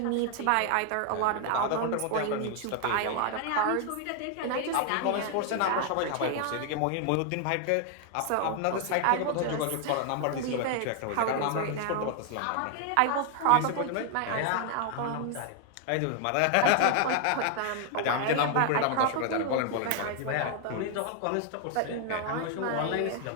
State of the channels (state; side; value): different; both; correlation 0.00